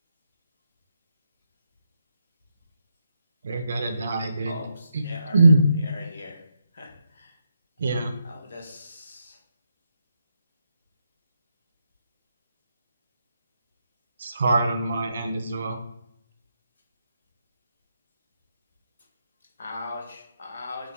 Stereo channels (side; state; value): both; inverted; correlation -0.82